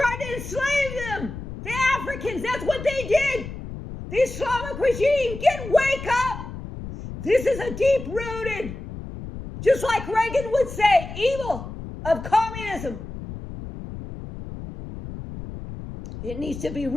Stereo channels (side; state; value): left; noise; rumble, 10 dB below the sound